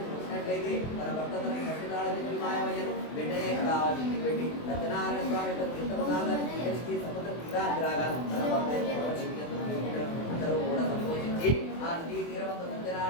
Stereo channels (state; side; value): late; right; 24 ms